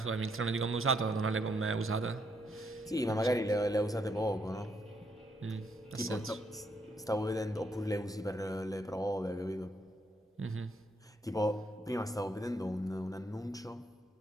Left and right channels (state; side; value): normal; both; correlation 0.75